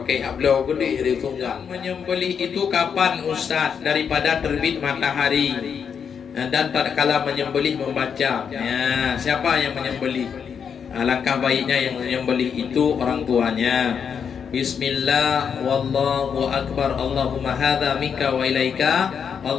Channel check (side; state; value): right; quieter; 7.0 dB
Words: ablau gede di tunggal. Menyembelih itu kapan Ustaz? Daripada terbit matahari. Dan tatkala menyembelih membaca. Ya, siapa yang menyembelih? Alangkah baiknya yang menyembelih itu orang tuanya. Bismillah wallahu akbar. Allahumma hadza minka wa ilaika.